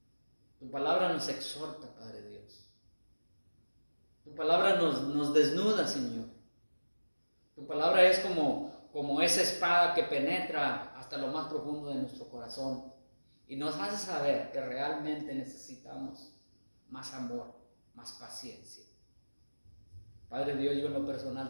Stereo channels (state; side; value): inverted; both; correlation -1.00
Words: tu palabra nos exhorta, Padre Dios. Tu palabra nos desnuda, Señor. Tu palabra es como esa espada que penetra hasta lo más profundo de nuestro corazón y nos hace saber que realmente necesitamos más amor, más paciencia. Padre Dios, yo en lo